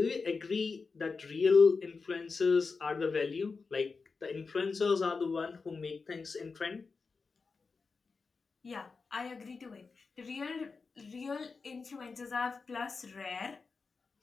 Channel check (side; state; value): right; quieter; 4.6 dB